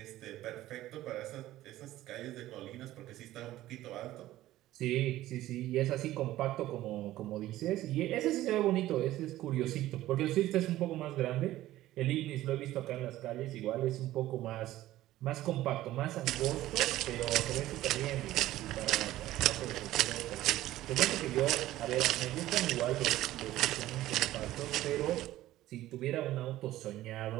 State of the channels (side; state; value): left; quieter; 15.1 dB